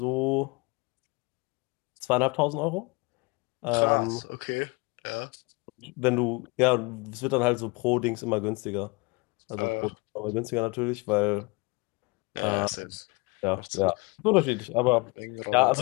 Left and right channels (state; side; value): quieter; right; 27.3 dB